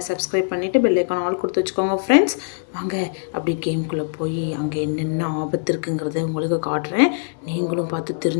சப்ஸ்கிரைப் பண்ணிவிட்டு பெல் ஐக்கான் ஆல் கொடுத்து வச்சுக்கோங்க ஃப்ரெண்ட்ஸ். வாங்க அப்படி கேம்குள்ளே போய் அங்கே என்னென்ன ஆபத்து இருக்குங்கிறத உங்களுக்கு காட்டுறேன். நீங்களும் பார்த்து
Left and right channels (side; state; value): right; silent; digital silence